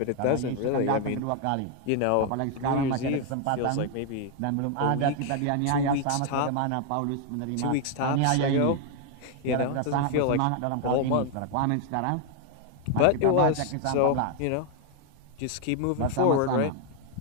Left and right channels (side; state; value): both; different; correlation 0.01